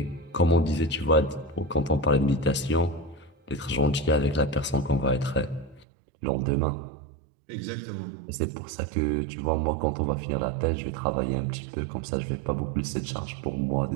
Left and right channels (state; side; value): drops out; left; at 5.9 s